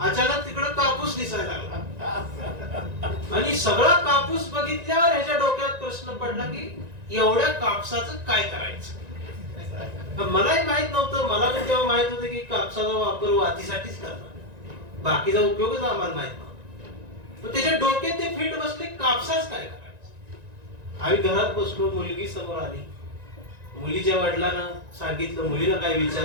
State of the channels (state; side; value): late; left; 1.9 ms